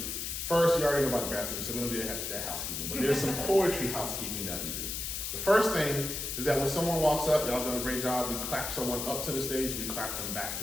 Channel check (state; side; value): noise; left; hiss, 4 dB below the sound